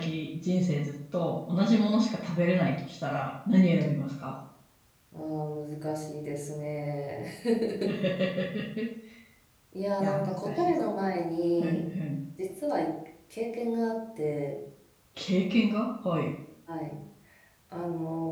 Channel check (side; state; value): both; identical; correlation 1.00